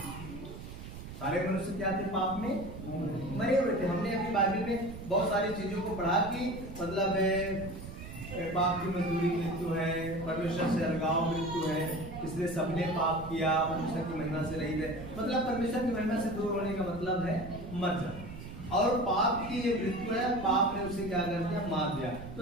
सारे मनुष्य क्या थे? पाप में मरे हुए थे। हमने अभी बाइबल में बहुत सारी चीजों को पढ़ा कि मतलब पाप की मजदूरी मृत्यु है, परमेश्वर से अलगाव मृत्यु है, इसलिए सबने पाप किया, परमेश्वर की महिमा से रहित है। मतलब परमेश्वर की महिमा से दूर होने का मतलब है मर जाना। और पाप की ये मृत्यु है, पाप ने उसे क्या कर दिया? मार दिया।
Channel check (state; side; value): noise; right; rumble, 11 dB below the sound